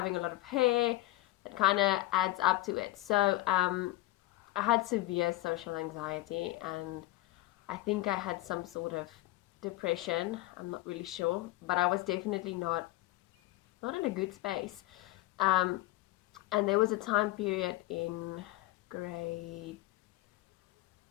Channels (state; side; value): quieter; right; 18.3 dB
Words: a lot of hair, it kind of adds up to it. So I had severe social anxiety, and I think I had some sort of depression. I'm not really sure, but I was definitely not in a good space. Um, and there was a time period in grade,